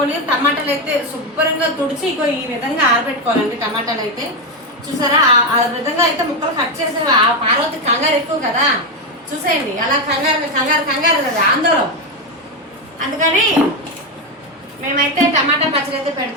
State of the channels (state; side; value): normal; both; correlation 0.08